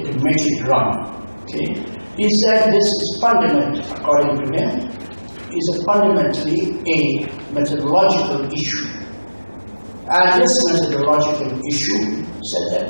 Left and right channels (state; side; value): inverted; both; correlation -1.00